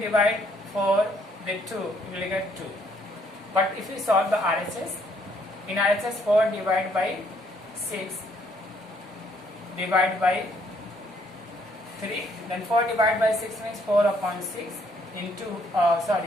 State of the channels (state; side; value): normal; both; correlation 0.67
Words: 4 with 2, you will get 2. But if you solve the RHS, in RHS 4 divided by 6 divided by 3, then 4 divided by 6 means 4 upon 6 into,